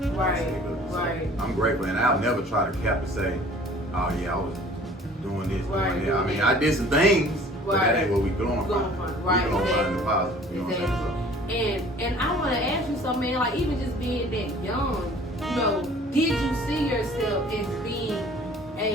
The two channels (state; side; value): normal; both; correlation 0.50